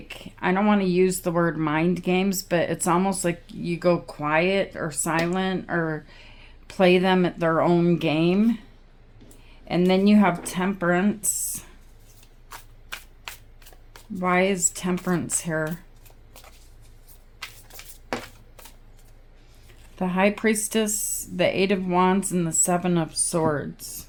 I don't want to use the word mind games, but it's almost like you go quiet or silent or play them at their own game. And then you have Temperance. Why is Temperance here? The High Priestess, the Eight of Wands, and the Seven of Swords.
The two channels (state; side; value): identical; both; correlation 1.00